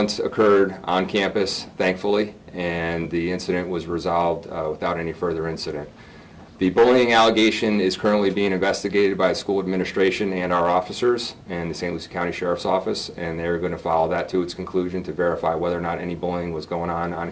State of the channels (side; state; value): both; identical; correlation 1.00